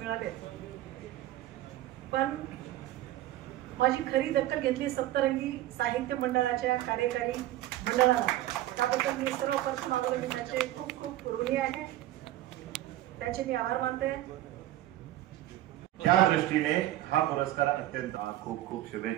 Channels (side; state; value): left; quieter; 14.6 dB